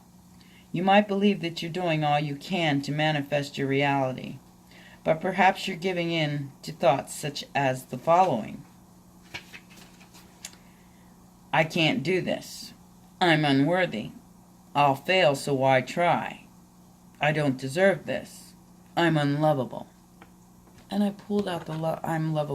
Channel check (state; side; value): identical; both; correlation 1.00